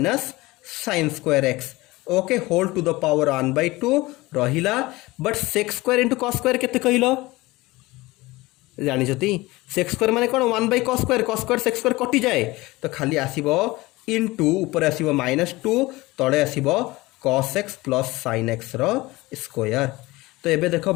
sin square x okay whole to the power 1/2 रहिला but sec square into cos square केते कहलो जानिछती सेक स्क्वायर माने कोन 1/cos स्क्वायर सेक स्क्वायर कटि जाए तो खाली आसीबो इनटू ऊपर आसीबो -2 तळे आसीबो cos x plus sin x रो स्क्वायर। तो एबे देखो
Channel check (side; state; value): right; quieter; 20.6 dB